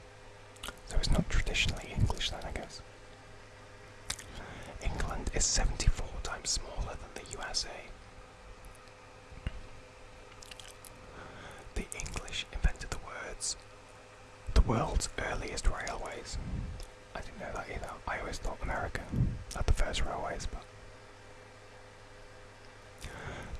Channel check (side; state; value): both; identical; correlation 1.00